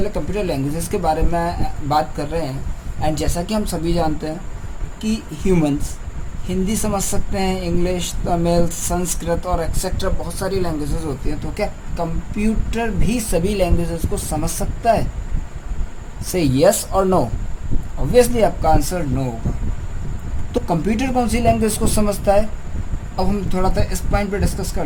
computer languages के बारे में बात कर रहे हैं। एंड जैसा कि हम सभी जानते हैं कि ह्यूमंस हिंदी समझ सकते हैं, इंग्लिश, तमिल, संस्कृत और एक्सेट्रा बहुत सारी लैंग्वेजेस होती हैं। तो क्या कंप्यूटर भी सभी लैंग्वेजेस को समझ सकता है? से यस और नो। ऑब्वियसली आपका आंसर नो होगा। तो कंप्यूटर कौन सी लैंग्वेज को समझता है? अब हम थोड़ा सा इस पॉइंट पे डिस्कस कर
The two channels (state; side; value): identical; both; correlation 1.00